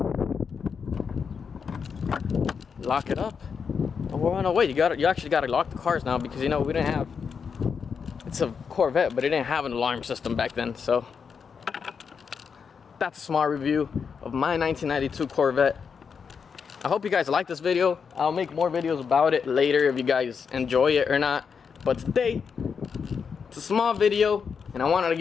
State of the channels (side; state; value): right; quieter; 6.2 dB